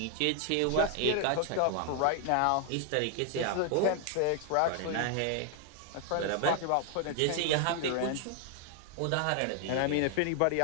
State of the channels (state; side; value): different; both; correlation 0.00